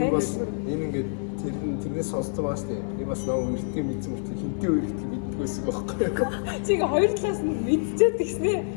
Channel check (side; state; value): right; silent; digital silence